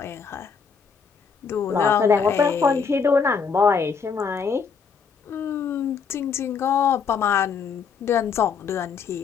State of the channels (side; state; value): right; quieter; 5.9 dB